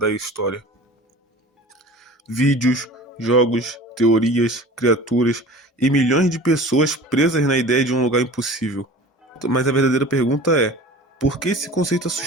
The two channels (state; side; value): normal; both; correlation 0.40